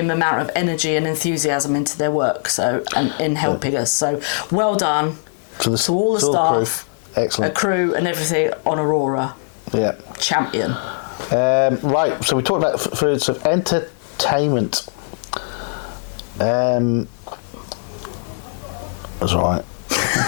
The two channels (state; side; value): silent; right; 58 dB below the other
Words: amount of energy and enthusiasm into their work, and in helping us. So well done to all the staff, excellent, a crew, and everything on Aurora. Yeah, champion. Right, so we talked about foods of entertainment. That's right.